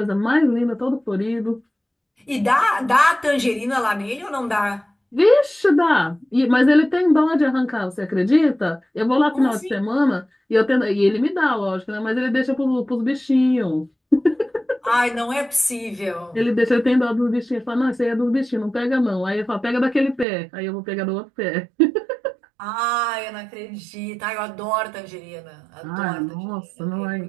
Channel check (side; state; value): left; drops out; at 20.2 s